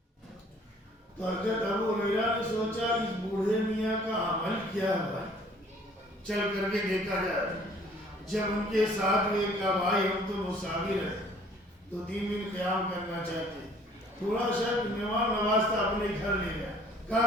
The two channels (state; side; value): normal; both; correlation 0.56